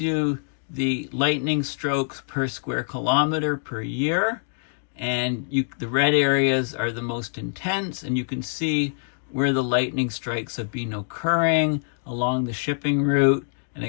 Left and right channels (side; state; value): right; silent; digital silence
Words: the lightning strokes per square kilometer per year, and the red areas are the most intense, and you can see where the lightning strikes have been occurring along the shipping route, and